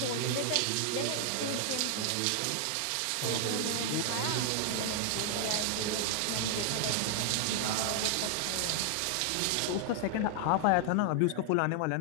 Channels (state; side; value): different; both; correlation 0.00